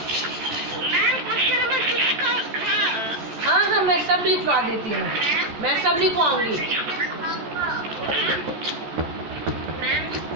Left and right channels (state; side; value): late; left; 14 ms